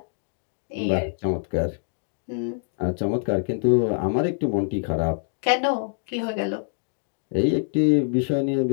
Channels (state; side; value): silent; right; digital silence